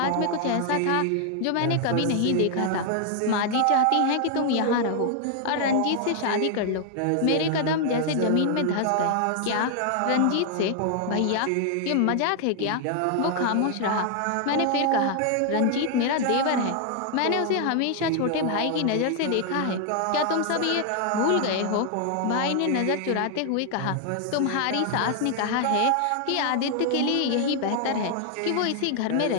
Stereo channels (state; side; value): different; both; correlation 0.00